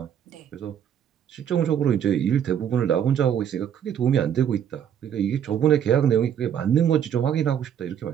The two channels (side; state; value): left; quieter; 9.1 dB